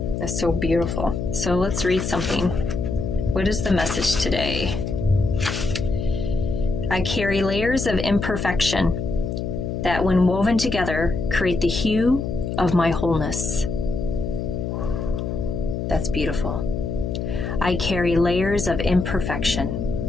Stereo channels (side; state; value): left; noise; hum, 3 dB below the sound